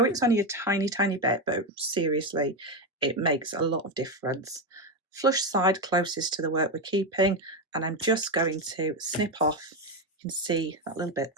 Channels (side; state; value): both; normal; correlation 0.11